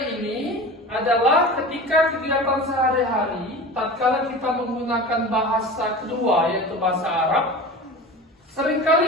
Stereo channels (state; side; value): normal; both; correlation 0.33